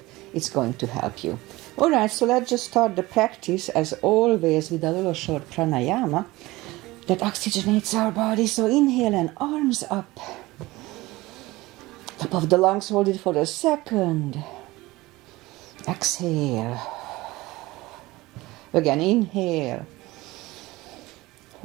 it's going to help you. Alright, so let's just start the practice as always with a little short pranayama that oxygenates our body. So inhale and arms up. Top of the lungs, hold it for a second. Exhale. Again, inhale.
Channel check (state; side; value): quieter; left; 19.9 dB